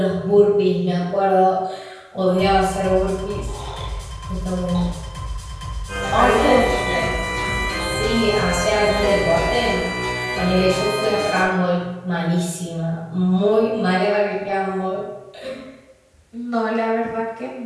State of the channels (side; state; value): both; identical; correlation 1.00